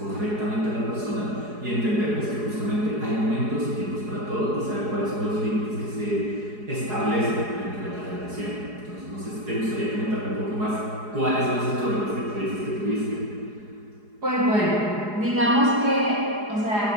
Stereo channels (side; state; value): left; late; 4.8 ms